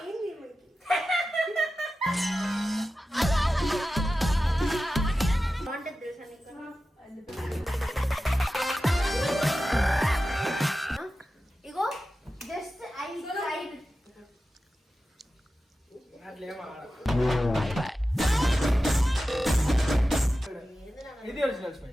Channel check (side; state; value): both; normal; correlation 0.93